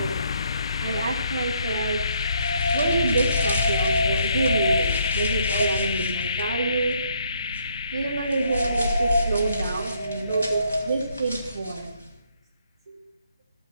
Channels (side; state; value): both; inverted; correlation -0.70